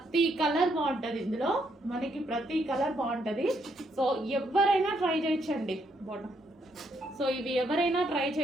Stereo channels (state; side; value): normal; both; correlation 0.75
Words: కలర్ బాగుంటుంది ఇందులో, మనకి ప్రతి కలర్ బాగుంటుంది. సో ఎవరైనా ట్రై చేయొచ్చండి బాటమ్. సో ఇవి ఎవరైనా ట్రై